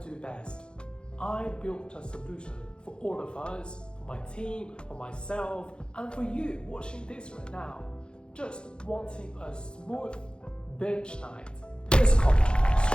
best. I built a solution for all of us, for my team, for myself, and for you watching this right now. Just wanting a smooth binge night. Here's a copy,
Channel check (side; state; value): right; late; 0.052 ms